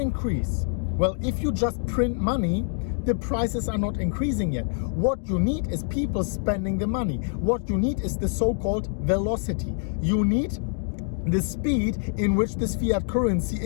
well, if you just print money, the prices are not increasing yet. What you need is people spending the money. What you need is the so-called velocity. You need the speed in which this fiat currency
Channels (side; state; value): right; silent; 58 dB below the other